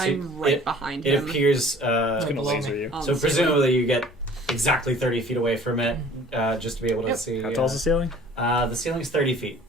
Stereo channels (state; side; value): normal; both; correlation 0.50